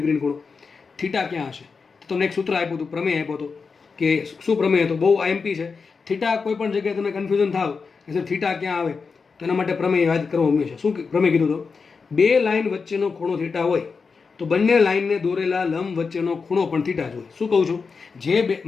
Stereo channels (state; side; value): quieter; right; 5.0 dB